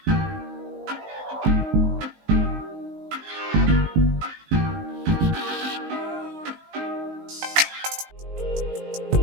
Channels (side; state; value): left; late; 19 ms